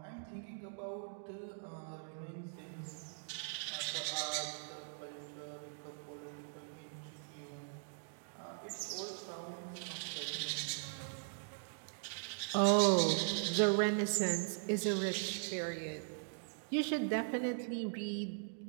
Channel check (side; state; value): left; silent; digital silence